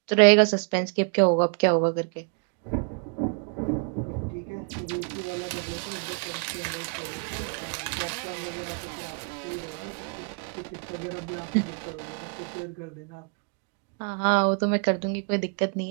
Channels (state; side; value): quieter; left; 39.5 dB